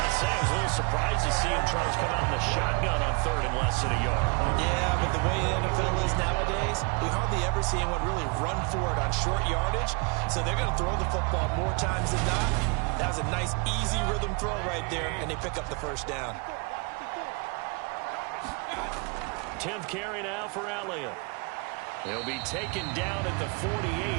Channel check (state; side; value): quieter; left; 31.1 dB